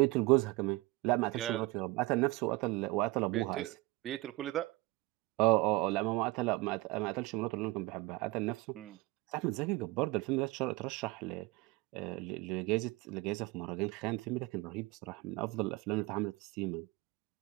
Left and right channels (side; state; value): left; quieter; 21.8 dB